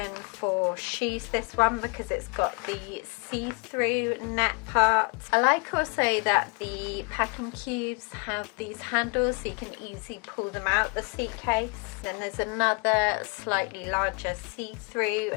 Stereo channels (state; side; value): quieter; right; 32.4 dB